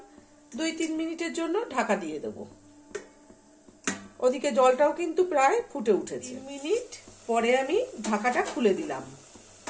2-3 মিনিটের জন্য ঢাকা দিয়ে দেব। ওদিকে জলটাও কিন্তু প্রায় ফুটে উঠেছে। 3 মিনিট পরে আমি ঢাকাটা খুলে দিলাম।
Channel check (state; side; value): identical; both; correlation 1.00